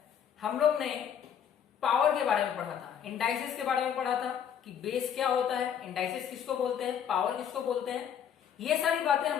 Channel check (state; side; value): quieter; right; 8.6 dB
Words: हम लोग ने पावर के बारे में पढ़ा था, इंडाइसेस के बारे में पढ़ा था कि बेस क्या होता है, इंडाइसेस किसको बोलते हैं, पावर किसको बोलते हैं। ये सारी बातें